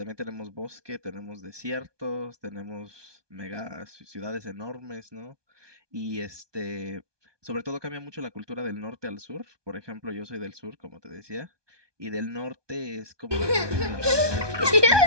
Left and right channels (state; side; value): late; left; 1.2 ms